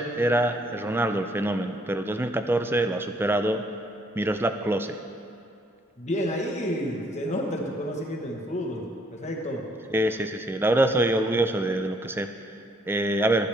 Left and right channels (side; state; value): both; normal; correlation 0.67